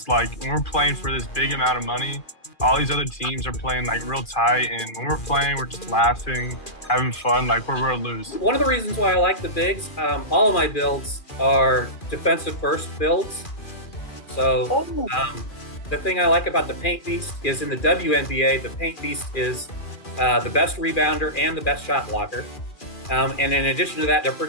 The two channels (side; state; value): right; late; 2.4 ms